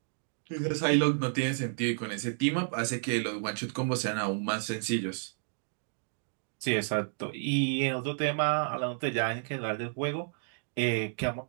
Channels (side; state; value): left; silent; digital silence